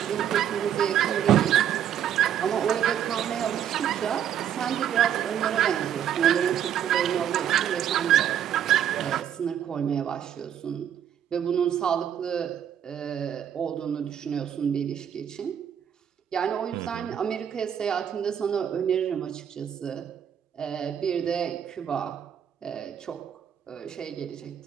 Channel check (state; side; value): quieter; left; 9.6 dB